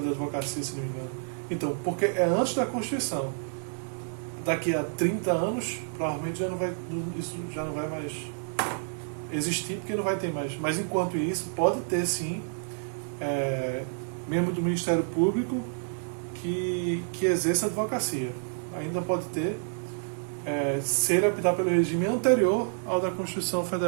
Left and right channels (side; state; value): left; silent; digital silence